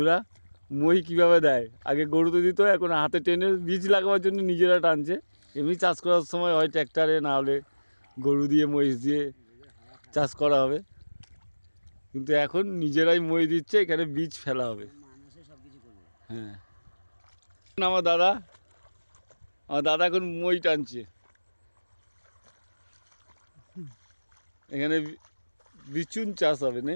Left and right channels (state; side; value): inverted; both; correlation -1.00